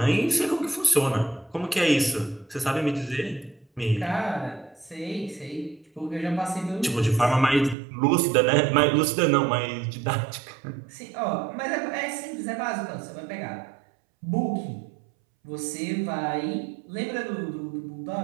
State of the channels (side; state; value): left; drops out; at 7.8 s